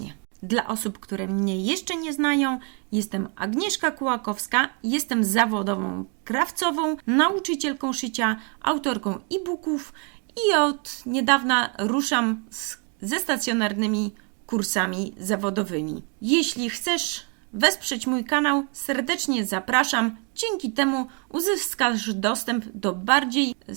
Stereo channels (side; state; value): left; quieter; 36.3 dB